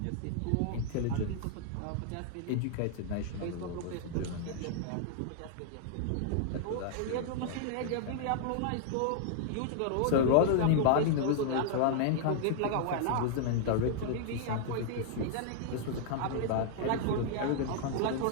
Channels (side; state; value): both; different; correlation -0.01